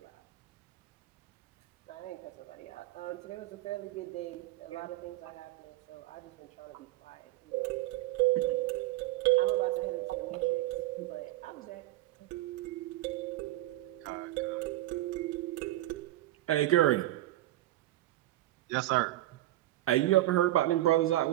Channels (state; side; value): quieter; left; 15.8 dB